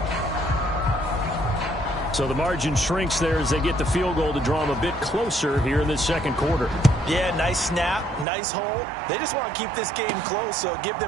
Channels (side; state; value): left; drops out; at 8.2 s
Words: So the margin shrinks there as they get the field goal to draw them a bit closer here in this 2nd quarter. Yeah, nice snap, nice hold. They just want to keep this game close, so give